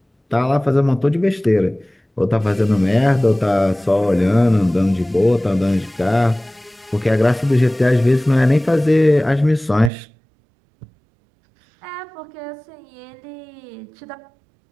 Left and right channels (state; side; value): drops out; left; at 9.9 s